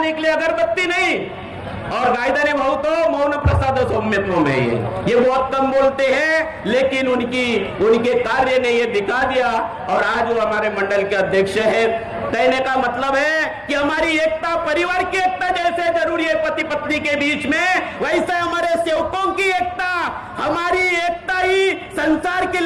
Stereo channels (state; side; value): identical; both; correlation 1.00